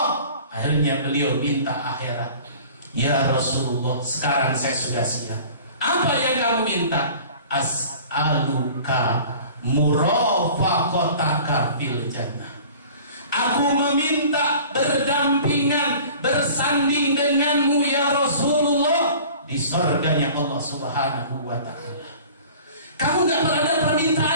Akhirnya beliau minta akhirat. Ya Rasulullah, sekarang saya sudah siap. Apa yang kamu minta? As'aluka murafaqataka fil jannah. Aku meminta berdampingan, bersanding denganmu ya Rasulullah di surganya Allah Subhanahu wa ta'ala. Kamu tidak ada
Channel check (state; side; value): inverted; both; correlation -0.45